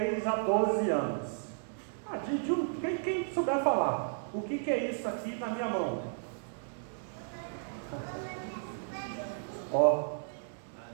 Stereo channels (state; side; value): silent; left; digital silence